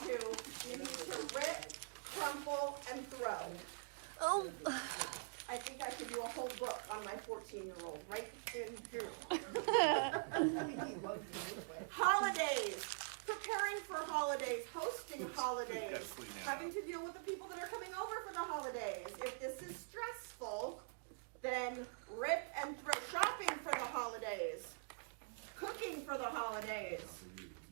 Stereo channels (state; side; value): silent; left; digital silence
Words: you need to rip, crumple, and throw. Oh. I think I could do a whole book on my 14-year-old right in here. Holidays. Preparing for holidays, hosting holidays, clean that having to deal with the people that are coming over for the holidays. If this is stressful, then rip and throw. Shopping for the holidays, cooking for the holidays.